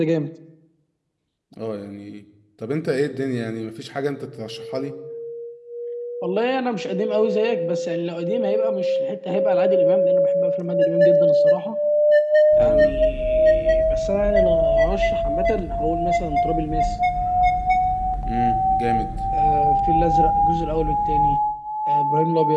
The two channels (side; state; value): both; identical; correlation 1.00